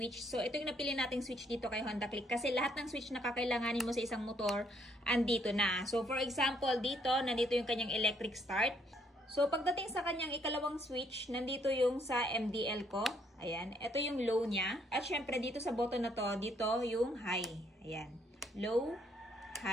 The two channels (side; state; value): both; normal; correlation 0.69